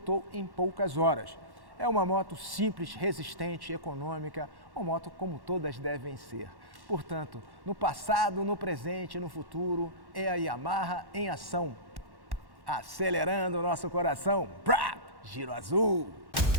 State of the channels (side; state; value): left; late; 1.1 ms